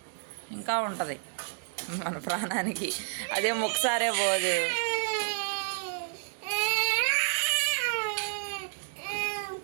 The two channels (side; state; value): left; silent; digital silence